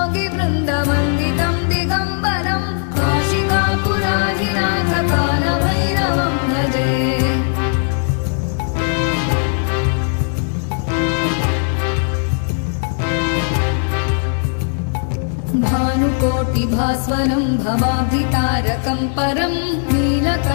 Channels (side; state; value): right; silent; 57 dB below the other